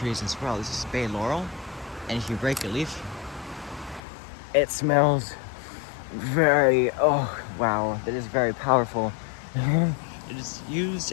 as well. This is bay laurel, and if you break a leaf, it smells very, oh wow, that is very powerful. It is used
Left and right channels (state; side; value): drops out; right; at 4.0 s